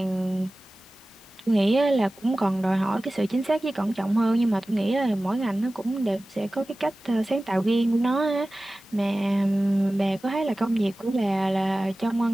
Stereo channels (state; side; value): normal; both; correlation 0.97